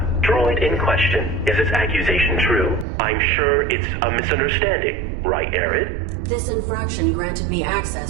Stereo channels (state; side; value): drops out; left; at 2.9 s